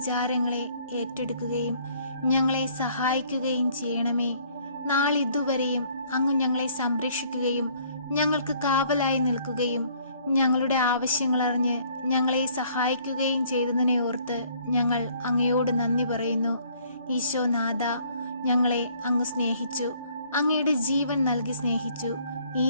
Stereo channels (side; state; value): both; inverted; correlation -0.61